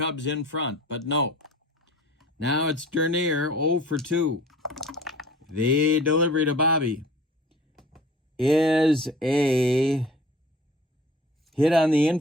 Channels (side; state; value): both; normal; correlation 0.45